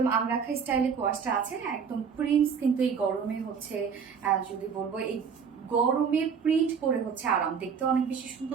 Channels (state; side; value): quieter; left; 6.5 dB